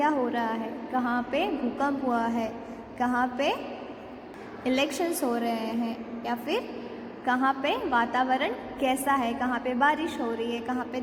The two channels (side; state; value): both; identical; correlation 1.00